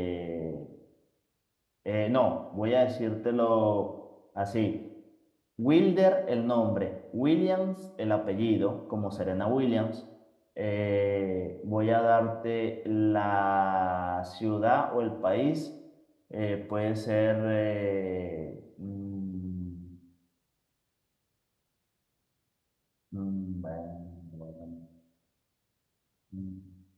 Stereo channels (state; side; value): identical; both; correlation 1.00